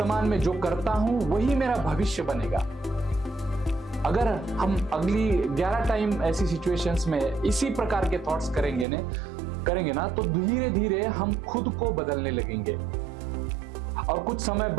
में जो करता हूं वही मेरा भविष्य बनेगा। अगर हम अगली 11 टाइम ऐसी सिचुएशंस में इसी प्रकार के थॉट्स करेंगे ना, तो धीरे धीरे हम खुद को बदलने लगेंगे और कुछ समय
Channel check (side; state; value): left; drops out; at 8.8 s